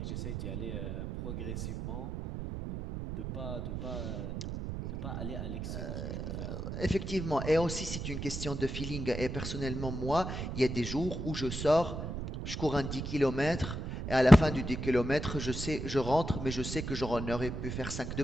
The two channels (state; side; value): noise; right; rumble, 5 dB below the sound